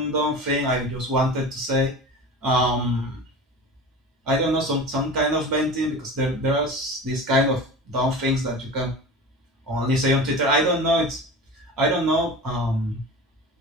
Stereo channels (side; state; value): both; normal; correlation 0.33